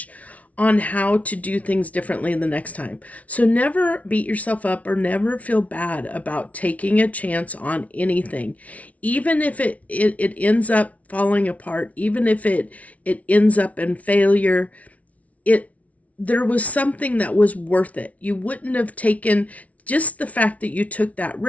on how to do things differently the next time. So never beat yourself up or never feel bad about taking a chance on anything. Even if it ends up falling apart, even if it ends up in failure, it there was something that was worth it. You wouldn't have taken, just the fact that you took that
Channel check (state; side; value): late; right; 0.068 ms